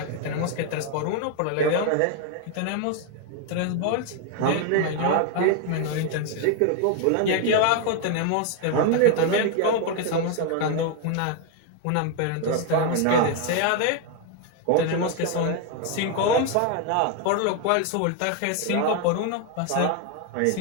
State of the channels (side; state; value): both; different; correlation 0.01